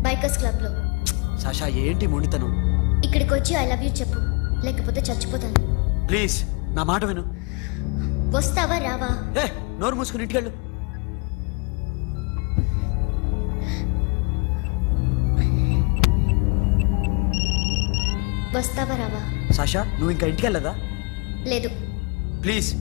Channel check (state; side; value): quieter; right; 30.0 dB